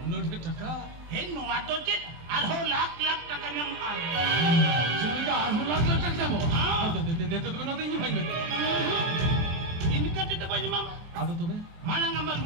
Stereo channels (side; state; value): left; late; 23 ms